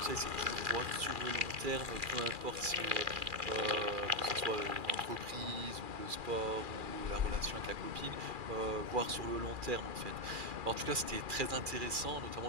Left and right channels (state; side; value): late; left; 2.4 ms